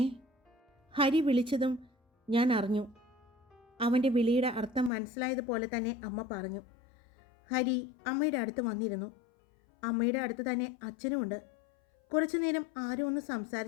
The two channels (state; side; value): drops out; right; at 4.9 s